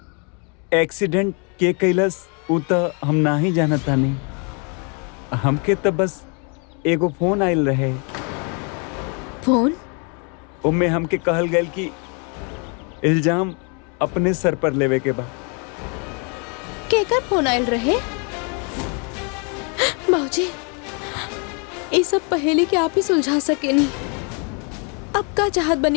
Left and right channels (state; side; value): quieter; right; 36.2 dB